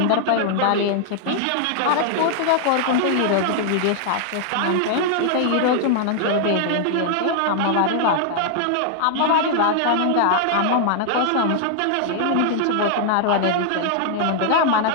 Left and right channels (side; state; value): both; different; correlation -0.01